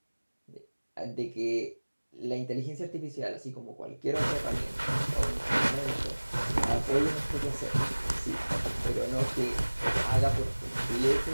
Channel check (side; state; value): both; inverted; correlation -1.00